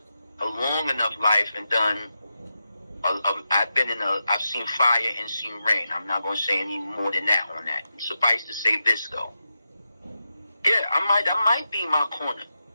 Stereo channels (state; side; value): inverted; both; correlation -0.89